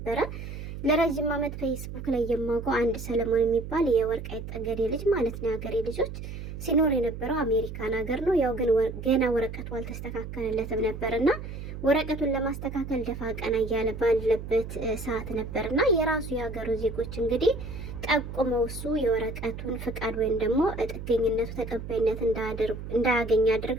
ለረጅም ዓመት ፌስቡክ ላይ የማውቀው አንድ ሰለሞን የሚባል የወልቃይት ጠገዴ ልጅ ማለት ነው የሀገሬ ልጆች ሲኖር የነበረው አሜሪካን ሀገር ነው። ያው ግን ገና ወረቀቱ አልተስተካከለለትም ነበርና ወረቀቱን ለማስተካከል ደፋ ቀና እያለ ባለበት ሰዓት ነበርና የራሱ የሀገሩ ዜጎች እንግዲህ ጠቁመው እሱ የወረቀቱን ፍቃድ ወይም ደግሞ ጥገኝነቱ ተቀባይነት እንዳያገኝ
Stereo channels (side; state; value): right; noise; hum, 9 dB below the sound